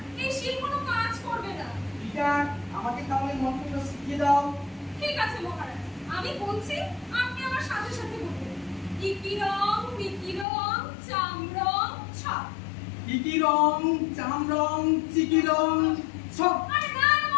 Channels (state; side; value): drops out; right; at 10.5 s